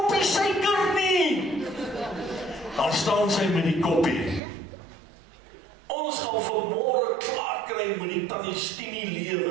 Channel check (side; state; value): left; drops out; at 4.4 s